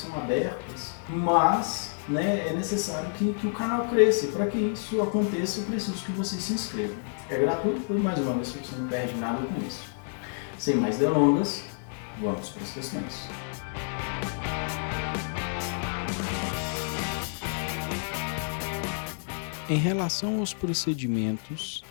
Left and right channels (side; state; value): right; silent; 59 dB below the other